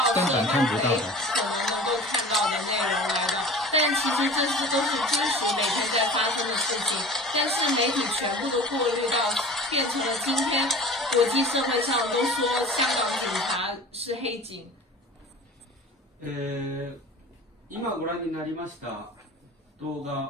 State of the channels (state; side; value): normal; both; correlation 0.38